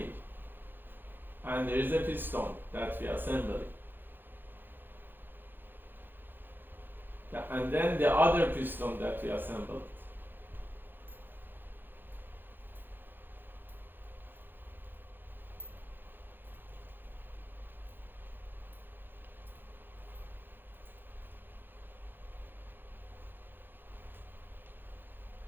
and there is a piston that we assemble it. And then the other piston that we assembled.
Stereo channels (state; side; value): late; left; 0.095 ms